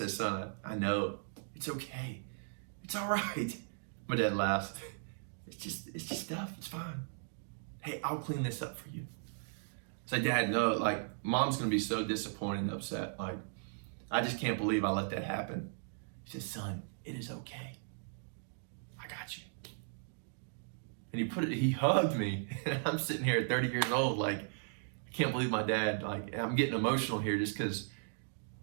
son, I know. It's okay. It's all right. My dad laughs. It's just stuff. It's fine. Hey, I'll clean this up for you. I said, Dad, no, like Mom's gonna be so disappointed and upset. Like, I just can't believe I let that happen. He says, son, it is okay. I got you. And he hugged me, and I'm sitting here at 30 years old, like, I can't believe my dad, like, I'm getting emotional here just because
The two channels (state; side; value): silent; left; digital silence